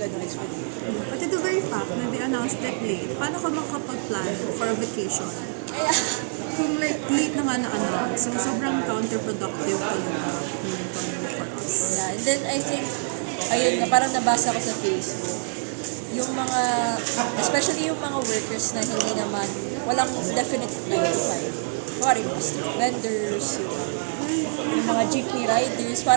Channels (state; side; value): silent; left; 62 dB below the other